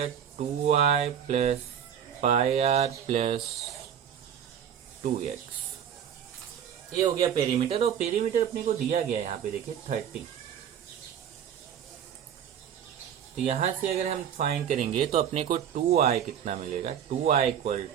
2y plus pi are plus 2x, ये हो गया पेरीमीटर। और पेरीमीटर अपने को दिया गया है यहाँ पे देखिए 30, तो यहां से अगर हम फाइंड करेंगे तो अपने को 2i कितना मिलेगा, 2i equal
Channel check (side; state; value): left; quieter; 9.0 dB